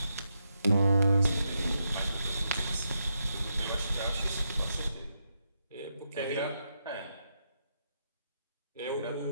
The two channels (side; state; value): both; inverted; correlation -0.82